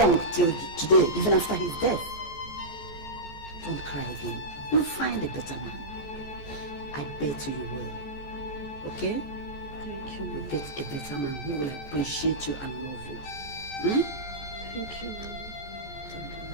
till today, even after his death. Don't cry again. You'll find a better man. I bet you will. Okay? Thank you. You'll get a better man who will appreciate you and love you. Thank you.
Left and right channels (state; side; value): late; right; 14 ms